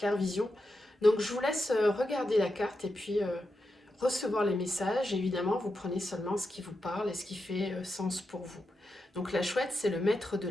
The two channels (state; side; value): normal; both; correlation 0.87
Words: vision. Donc je vous laisse regarder la carte et puis recevoir les messages. Évidemment, vous prenez seulement ce qui vous parle et ce qui fait sens pour vous. Donc la chouette, c'est le maître de